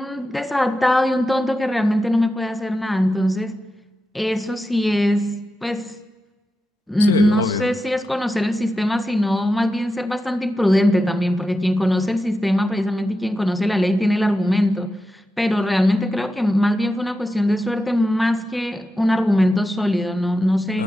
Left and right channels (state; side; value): normal; both; correlation 0.90